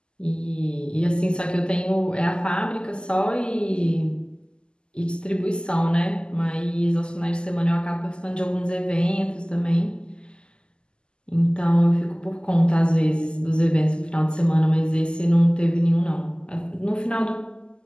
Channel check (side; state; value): right; late; 0.048 ms